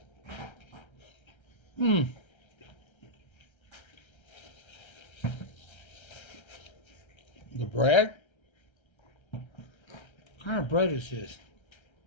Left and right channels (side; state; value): right; late; 1.3 ms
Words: The bread? What kind of bread is this?